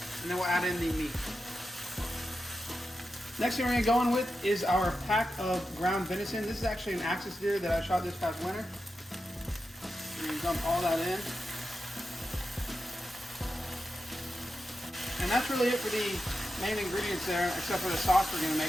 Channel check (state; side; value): normal; both; correlation 0.90